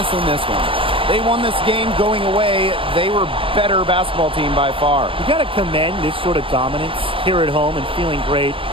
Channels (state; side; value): late; left; 0.25 ms